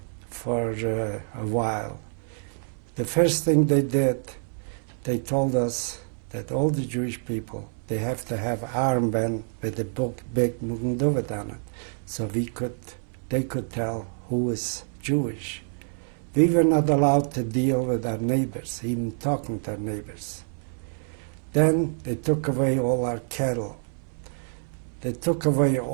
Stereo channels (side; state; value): left; silent; 60 dB below the other